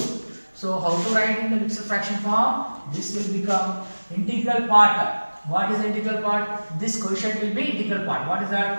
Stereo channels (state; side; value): inverted; both; correlation -1.00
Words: So how to write in the mixed fraction form? This will become integral part. What is the integral part? This quotient will be integral part. What is